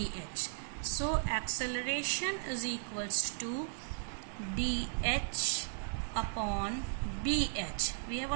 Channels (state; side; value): silent; left; digital silence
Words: So acceleration is equals to DH upon BH. We have